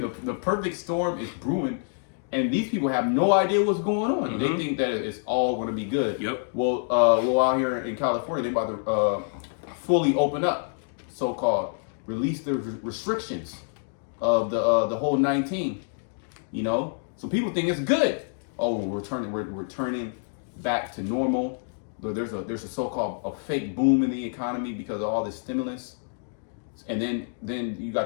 perfect storm is brewing. And these people have no idea what's going on. They think that it's all going to be good. Well, out here in California, they're about to fully open up, so-called, release the restrictions of the whole 19. So people think it's good. Oh, we're turning back to normal. There's a so-called a fake boom in the economy because of all this stimulus. And then you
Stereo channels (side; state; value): right; silent; digital silence